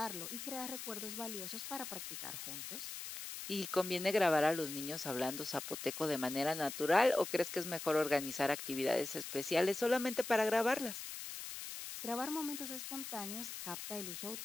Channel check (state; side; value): noise; left; hiss, 8 dB below the sound